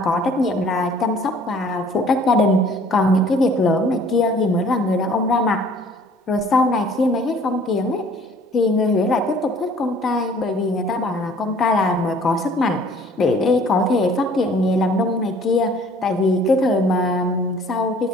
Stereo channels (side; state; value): both; normal; correlation 0.54